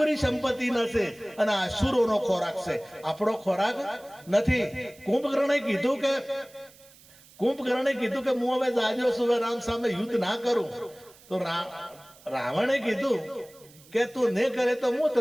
સંપત્તિ નથી, અને આસુરોનો ખોરાક છે, આપણો ખોરાક નથી. કુંભકર્ણે કીધું કે હું હવે જાજો છું, રામ સામે યુદ્ધ ના કરું. તો રાવણે કીધું કે તું નહીં કરે તો હું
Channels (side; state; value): right; noise; hiss, 25 dB below the sound